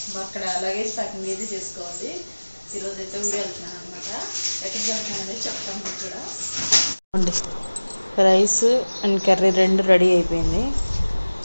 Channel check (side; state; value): both; inverted; correlation -1.00